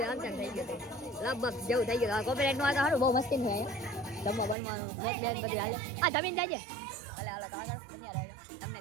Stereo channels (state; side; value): drops out; left; at 4.5 s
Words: આમ થઈ ગયું લગભગ જેવું થઈ ગયું. કોપીરાઇટ નું આ સારું બહુ મસ્તી છે જમવા બનવાનું મોટ બેન બધી હાલે. હા જમીન જાય છે ભલે હાલો તો આગળ બન્યા રહેજો. તમને